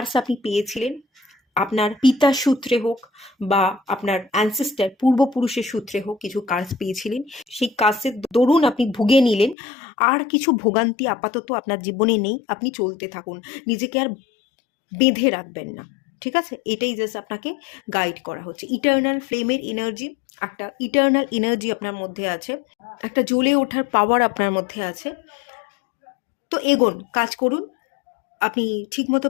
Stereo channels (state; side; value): drops out; right; at 9.6 s